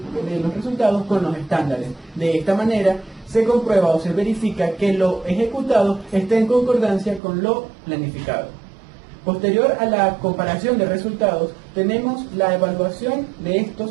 con los estándares. De esta manera se comprueba o se verifica que lo ejecutado está en concordancia con lo planificado. Posterior a la comparación de resultados, tenemos la evaluación de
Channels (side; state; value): left; drops out; at 7.2 s